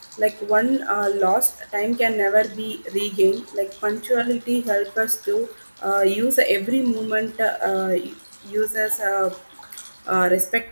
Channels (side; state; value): both; inverted; correlation -1.00